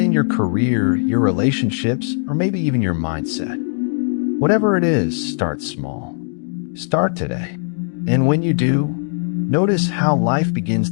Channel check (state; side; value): silent; right; 61 dB below the other